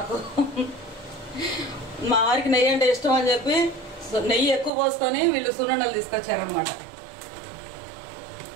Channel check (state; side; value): drops out; left; at 4.7 s